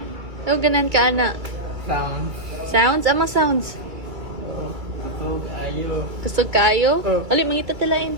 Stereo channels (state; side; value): late; left; 2.3 ms